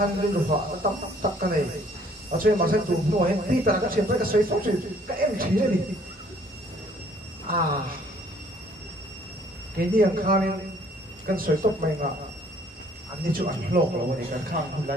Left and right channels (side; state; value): both; normal; correlation 0.60